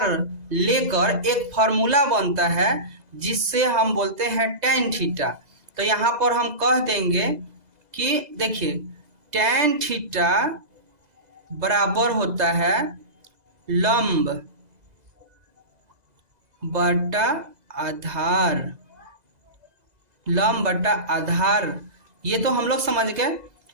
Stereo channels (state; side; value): late; left; 2.0 ms